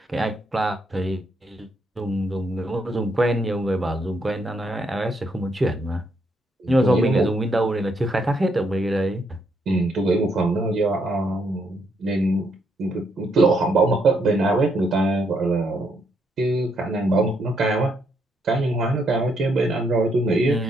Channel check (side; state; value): both; normal; correlation 0.75